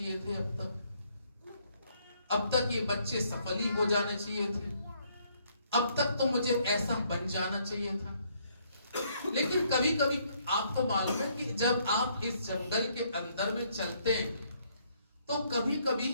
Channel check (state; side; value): inverted; both; correlation -0.69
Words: थे, अब तक ये बच्चे सफल ही हो जाने चाहिए थे, अब तक तो मुझे ऐसा बन जाना चाहिए था। लेकिन कभी कभी आपको मालूम है कि जब आप इस जंगल के अंदर में चलते हैं तो कभी कभी